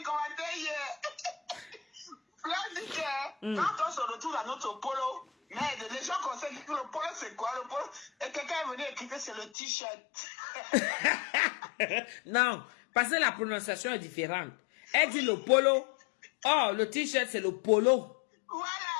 commentaires hier. Là, dit que quand on se retrouve à notre polo, mais les gens conseillent que le polo, c'est quoi? Le polo, et quelqu'un est venu écrire que c'est le t-shirt. Non, parce que la prononciation est différente. Elle dit le polo. Oh, le t-shirt, c'est le polo. Voilà,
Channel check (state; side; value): drops out; right; at 9.5 s